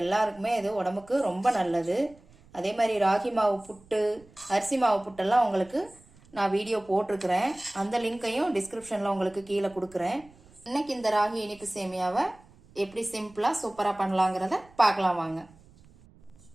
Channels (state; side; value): noise; right; rumble, 26 dB below the sound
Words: எல்லாருக்குமே இது உடம்புக்கு ரொம்ப நல்லது. அதே மாதிரி ராகி மாவு புட்டு, அரிசி மாவு புட்டெல்லாம் உங்களுக்கு நான் வீடியோ போட்டிருக்கிறேன். அந்த லிங்கையும் டிஸ்கிரிப்ஷன்ல உங்களுக்கு கீழே கொடுக்குறேன். இன்னைக்கு இந்த ராகி இனிப்பு சேமியாவை எப்படி சிம்பிளா சூப்பரா பண்ணலாங்கிறத பார்க்கலாம் வாங்க.